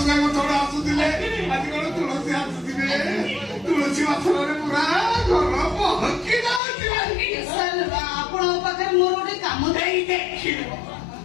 ଭାଇ ଥରେ ଆସୁଥିଲେ ଆଜି କଣ ତୁଳସୀ ଆସୁଥିବେ ତୁଳସୀ ବାସନରେ ପୁରା ଘର ପହଞ୍ଚି ଯାଉଛି। ସାର୍ ଆପଣଙ୍କ ପାଖରେ ମୋର ଗୋଟେ କାମ ଏଇ ଦେଖିଲ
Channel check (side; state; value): right; drops out; at 6.6 s